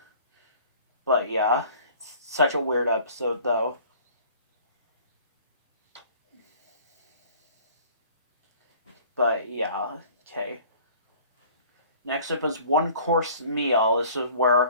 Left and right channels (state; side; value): inverted; both; correlation -0.50